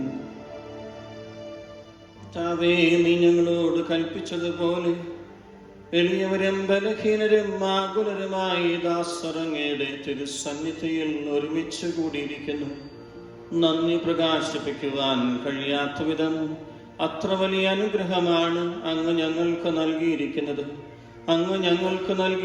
താവേ, നീ ഞങ്ങളോട് കൽപ്പിച്ചതുപോലെ എളിയവരും ബലഹീനരും ആകുലരുമായി ദാസറങ്ങയുടെ തിരുസന്നിധിയിൽ ഒരുമിച്ച് കൂടിയിരിക്കുന്നു. നന്ദി പ്രകാശിപ്പിക്കുവാൻ കഴിയാത്ത വിധം അത്ര വലിയ അനുഗ്രഹമാണ് അങ്ങ് ഞങ്ങൾക്ക് നൽകിയിരിക്കുന്നത്. അങ്ങ് ഞങ്ങൾക്ക്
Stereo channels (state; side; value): identical; both; correlation 1.00